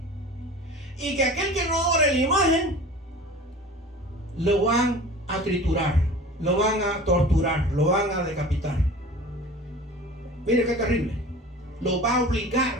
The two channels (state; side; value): normal; both; correlation 0.40